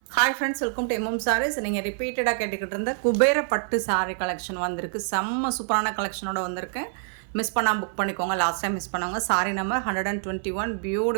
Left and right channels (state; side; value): silent; left; 61 dB below the other